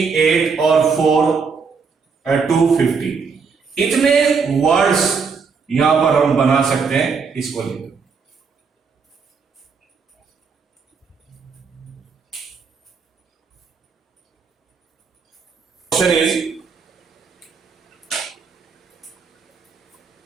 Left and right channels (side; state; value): left; quieter; 5.4 dB